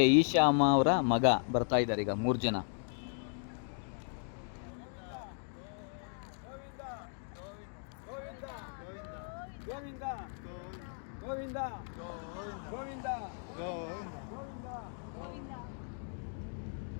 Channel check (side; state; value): right; silent; 54 dB below the other